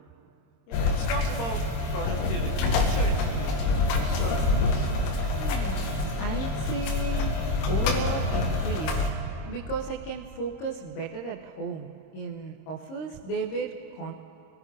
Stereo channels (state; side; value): late; right; 26 ms